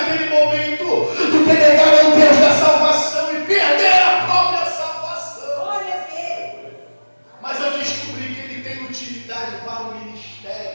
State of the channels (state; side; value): inverted; both; correlation -1.00